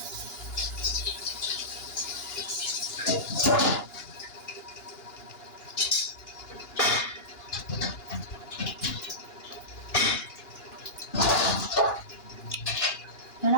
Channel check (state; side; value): late; right; 2.9 ms